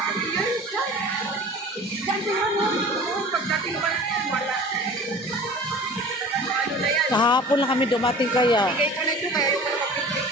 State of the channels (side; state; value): both; normal; correlation 0.42